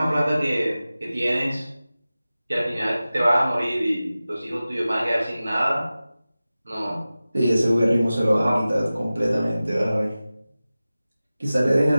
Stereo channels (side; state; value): both; inverted; correlation -0.96